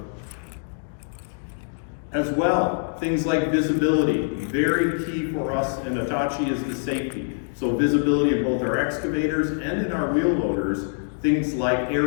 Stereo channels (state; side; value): silent; right; digital silence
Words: As well, things like visibility, very key for us in Hitachi is the safety. So visibility in both our excavators and in our wheel loaders. Things like